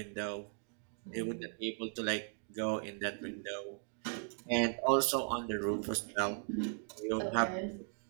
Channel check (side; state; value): left; silent; 53 dB below the other